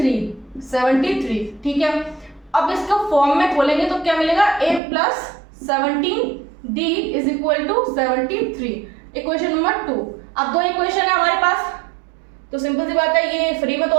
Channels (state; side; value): drops out; left; at 4.8 s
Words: 73। ठीक है, अब इसको फॉर्म में खोलेंगे तो क्या मिलेगा, A + 17D is equal to 73, equation number 2। अब 2 इक्वेशन है हमारे पास, तो सिंपल सी बात है, ये फ्री में तो